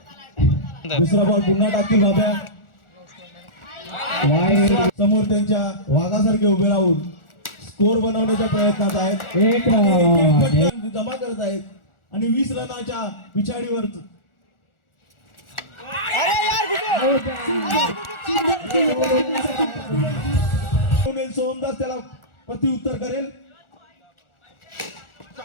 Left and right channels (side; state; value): right; late; 1.4 ms